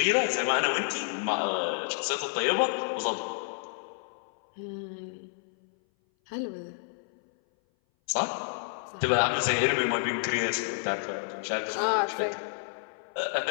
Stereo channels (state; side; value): silent; right; 57 dB below the other